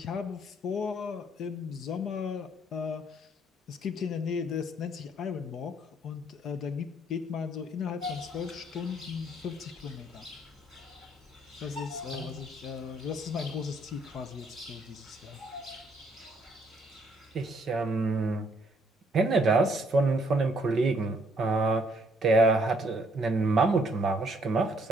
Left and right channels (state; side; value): normal; both; correlation 0.67